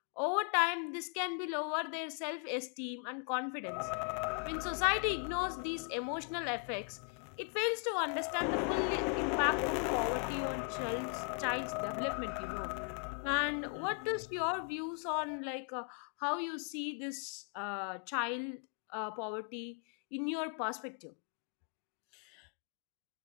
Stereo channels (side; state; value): right; quieter; 34.0 dB